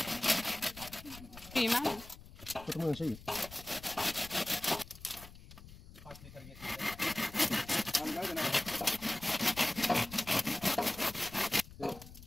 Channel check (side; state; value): left; noise; rumble, 17 dB below the sound